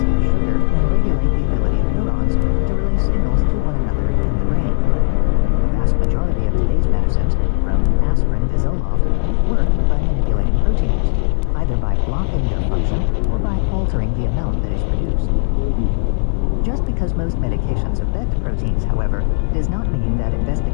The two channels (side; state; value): right; silent; 68 dB below the other